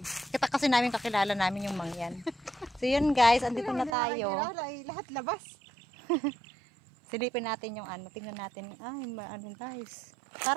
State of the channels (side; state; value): left; drops out; at 4.0 s